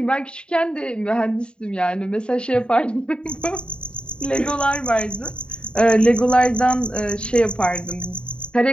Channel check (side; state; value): right; late; 0.052 ms